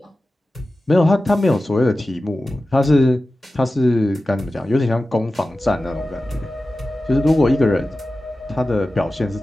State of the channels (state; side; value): normal; both; correlation 0.95